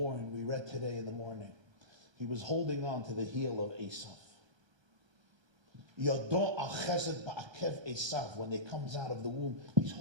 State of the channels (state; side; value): late; left; 1.3 ms